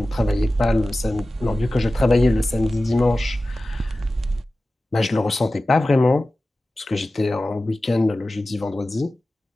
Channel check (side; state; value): both; normal; correlation 0.96